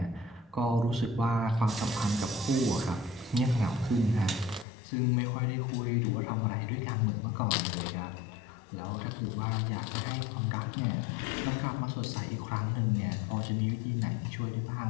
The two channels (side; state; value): right; drops out; at 4.7 s